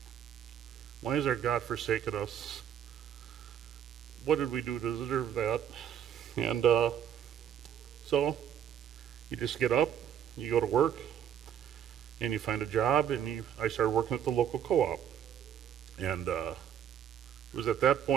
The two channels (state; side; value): quieter; left; 9.4 dB